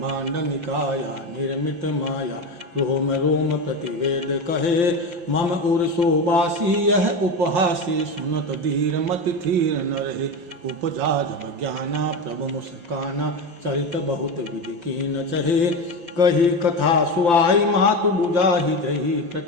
निकाया निर्मित माया रोम रोम प्रतिवेद कहे। मम उर शोबासी यह उपहासी सुनत धीर मति थीर न रहे। उपजा जब ज्ञाना प्रभु मुस्काना चरित बहुत विधि कीन चहे। कही कथा सुआई मातु बुझाहि जही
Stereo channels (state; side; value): late; left; 5.8 ms